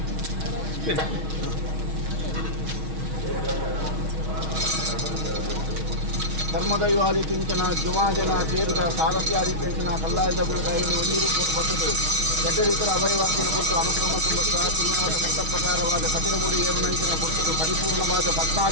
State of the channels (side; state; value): left; late; 6.2 ms